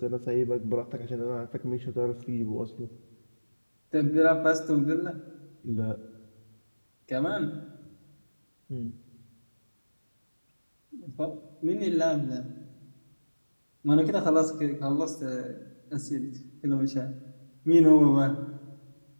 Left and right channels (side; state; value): both; inverted; correlation -1.00